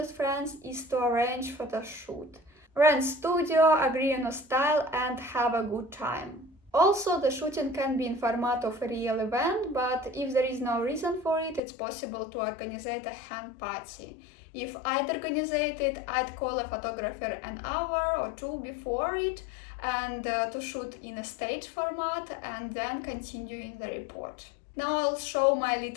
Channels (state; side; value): drops out; right; at 11.6 s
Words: friends is to arrange photo shoot. Rent studio, agree on a style and have a good time. Also, the shooting can be in format of a real event, but if there is no reason for it, it's possible to organize a hen party. If I'd organize it, I'd call a photographer an hour or two before it and to shoot in a stage format and then continue in the report. Now I'll show my